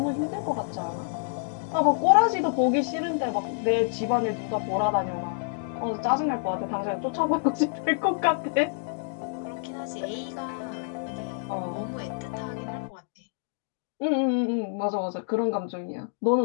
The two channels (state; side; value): silent; right; digital silence